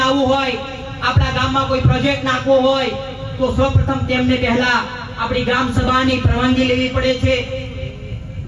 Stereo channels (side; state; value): both; identical; correlation 1.00